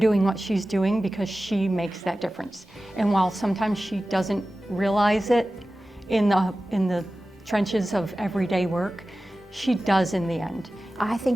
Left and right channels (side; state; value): both; normal; correlation 0.95